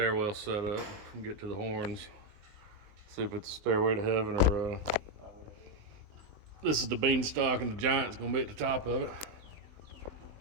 set up. Get to the horns. See if it's a stairway to heaven or this is the beanstalk and the giant's gonna be at the top of it.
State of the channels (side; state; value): left; late; 20 ms